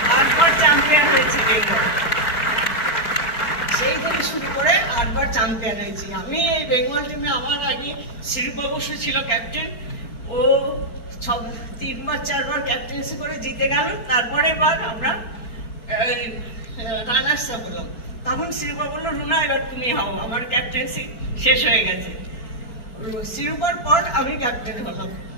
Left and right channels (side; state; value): right; late; 4.5 ms